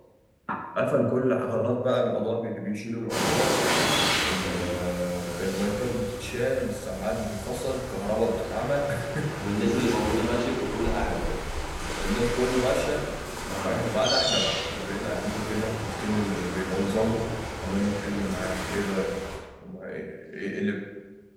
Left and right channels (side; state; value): both; identical; correlation 1.00